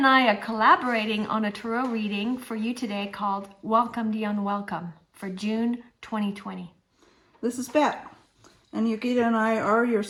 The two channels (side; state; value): both; identical; correlation 1.00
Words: I are collaborating on a tarot reading for you today called Welcome the Unwelcome for June 2020. This is Bet, and Yogita and I are your